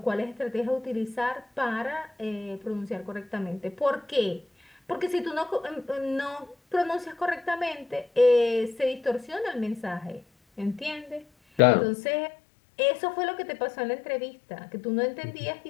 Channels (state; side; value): drops out; right; at 11.6 s